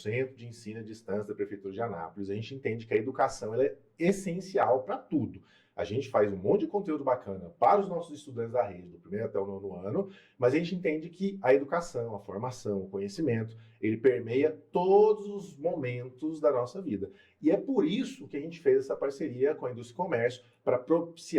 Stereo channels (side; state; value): both; identical; correlation 1.00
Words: de Ensino à Distância da Prefeitura de Anápolis, a gente entende que a educação ela é essencial para tudo. A gente faz um monte de conteúdo bacana para os nossos estudantes da rede, do primeiro até o nono ano, mas a gente entende que a educação, a formação, o conhecimento, ele permeia todos os momentos da nossa vida. E é por isso que a gente fez essa parceria com a Indústria e Comércio para